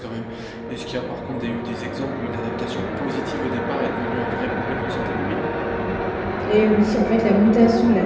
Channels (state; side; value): identical; both; correlation 1.00